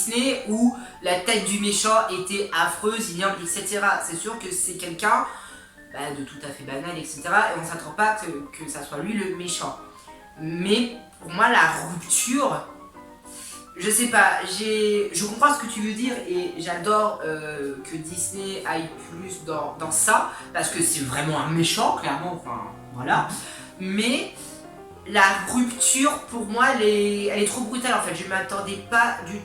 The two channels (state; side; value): identical; both; correlation 1.00